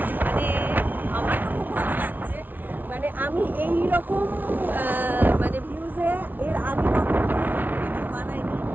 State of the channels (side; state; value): left; late; 0.085 ms